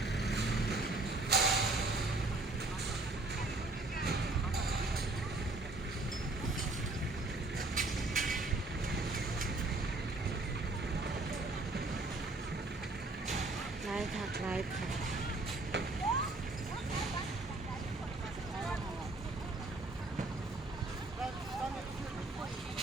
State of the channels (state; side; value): quieter; left; 3.0 dB